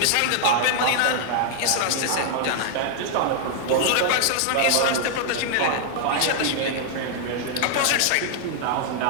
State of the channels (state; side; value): different; both; correlation 0.00